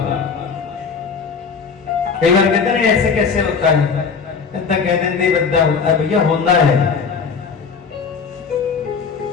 कई बार कहते हैं ऐसे कैसे होता है, कहते हैं भैया होता है,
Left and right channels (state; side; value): quieter; right; 5.6 dB